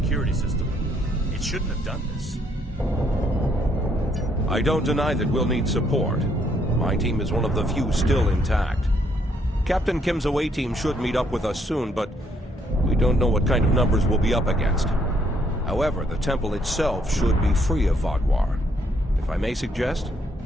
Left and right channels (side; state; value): both; normal; correlation 0.70